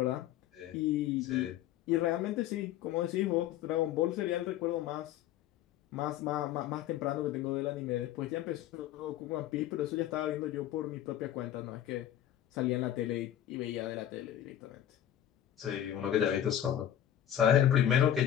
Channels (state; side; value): quieter; right; 11.4 dB